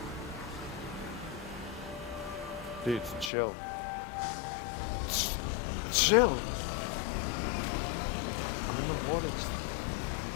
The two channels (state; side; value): drops out; right; at 3.3 s